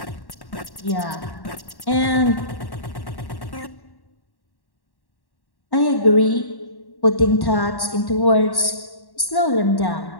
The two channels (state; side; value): late; right; 1.1 ms